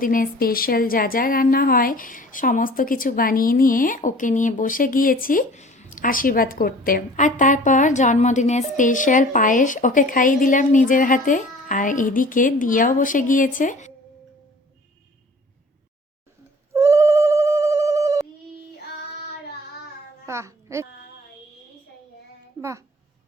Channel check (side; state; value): both; normal; correlation 0.48